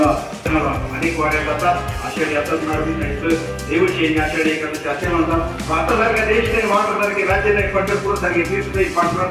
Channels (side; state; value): both; identical; correlation 1.00